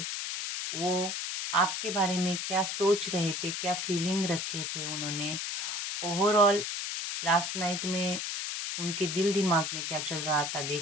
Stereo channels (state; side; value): noise; left; hiss, 3 dB below the sound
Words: वो आपके बारे में क्या सोच रहे थे, क्या फीलिंग रखे थे उन्होंने, ओवरऑल लास्ट नाइट में उनके दिल दिमाग में क्या चल रहा था